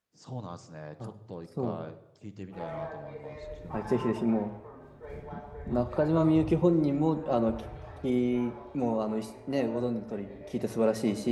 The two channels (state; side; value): identical; both; correlation 1.00